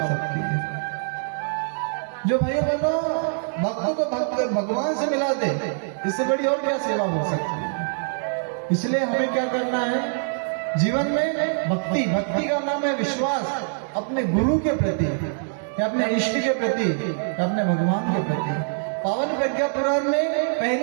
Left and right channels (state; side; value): silent; left; 62 dB below the other